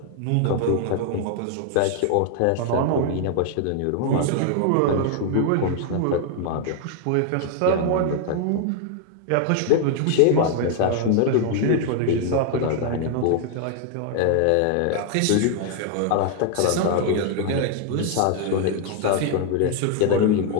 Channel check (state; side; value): different; both; correlation 0.00